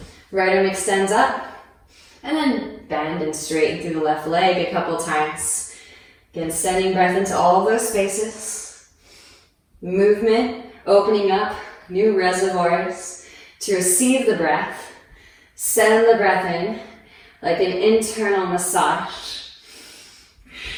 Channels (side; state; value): both; identical; correlation 1.00